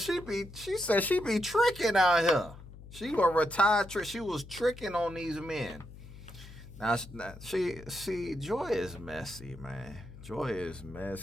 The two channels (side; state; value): left; noise; hum, 16 dB below the sound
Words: be tricking out here. She a retired trick. She was tricking on these men. Now she Joy is messy, man. Joy is